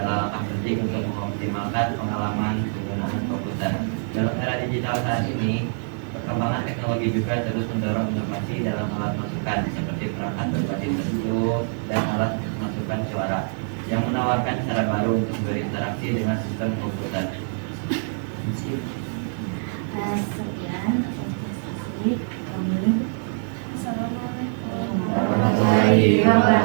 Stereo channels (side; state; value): left; silent; 62 dB below the other